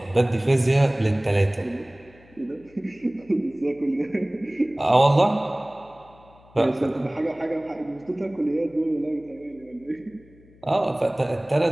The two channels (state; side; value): noise; left; hum, 26 dB below the sound